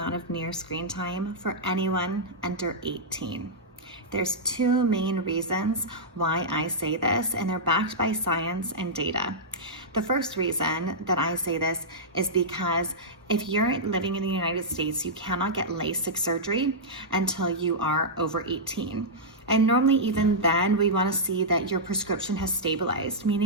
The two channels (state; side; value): normal; both; correlation -0.10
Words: of near screen time for anyone under 18. There's two main reasons why I say this, and they're backed by science and data. The first reason that I say this is because if you're living in the United States, you cannot get LASIK surgery until you are over 18. And normally even then, we want to see that your prescription has stabilized,